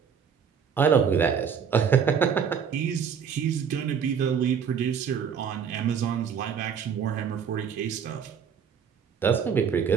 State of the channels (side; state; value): left; quieter; 7.1 dB